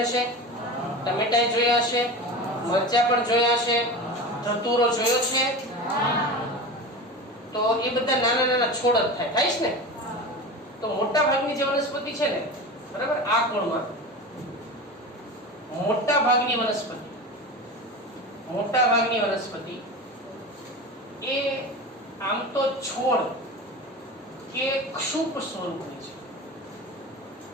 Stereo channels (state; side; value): normal; both; correlation 0.29